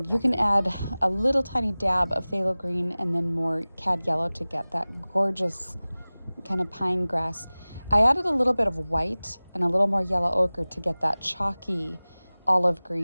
you can add a little tiny dab of phthalo green and then more cad yellow to get that gorgeous kind of pine grass. I added a little bit of white and a little more yellow ochre to get that chalky olive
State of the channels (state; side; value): inverted; both; correlation -0.99